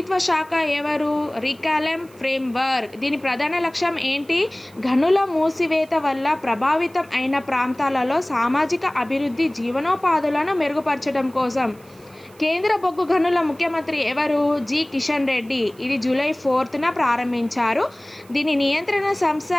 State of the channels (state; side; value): noise; right; hiss, 28 dB below the sound